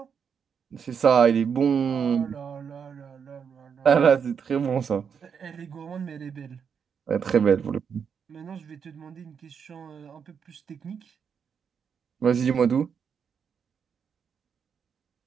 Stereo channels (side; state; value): left; quieter; 6.9 dB